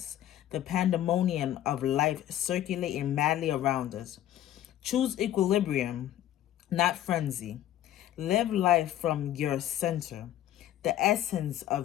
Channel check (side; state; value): right; quieter; 12.4 dB